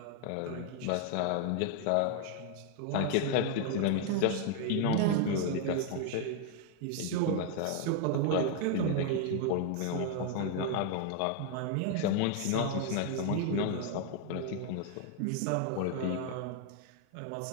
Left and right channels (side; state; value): both; different; correlation 0.00